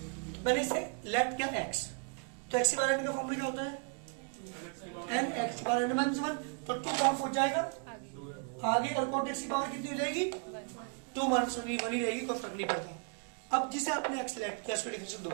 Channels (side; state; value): left; quieter; 39.0 dB